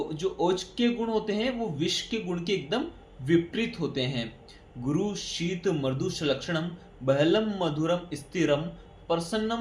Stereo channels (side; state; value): both; identical; correlation 1.00